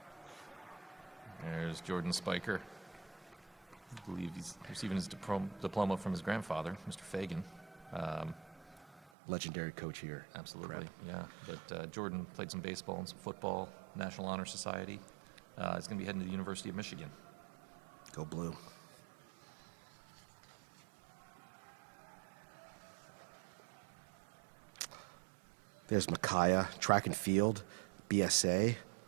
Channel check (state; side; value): drops out; left; at 9.1 s